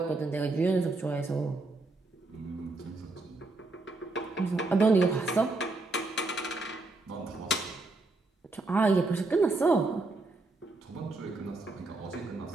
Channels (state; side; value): quieter; left; 3.2 dB